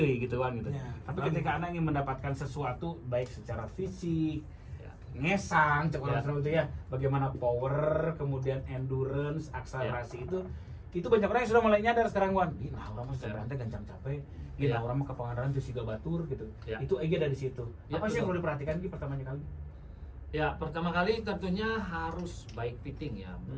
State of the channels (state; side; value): identical; both; correlation 1.00